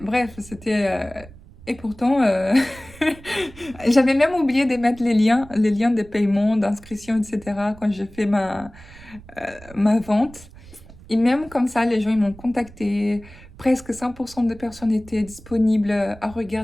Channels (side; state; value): right; noise; rumble, 20 dB below the sound